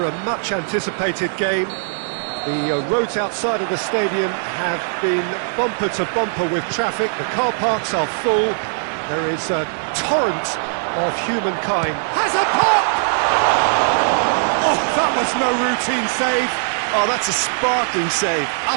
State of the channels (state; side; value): silent; left; 60 dB below the other